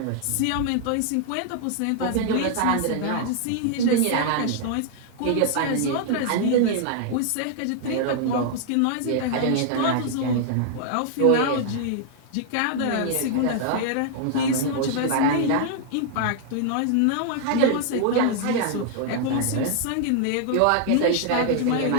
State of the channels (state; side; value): different; both; correlation 0.00